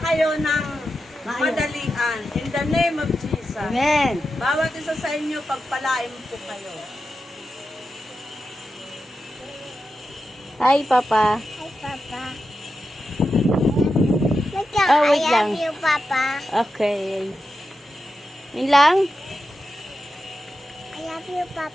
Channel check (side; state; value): both; normal; correlation 0.90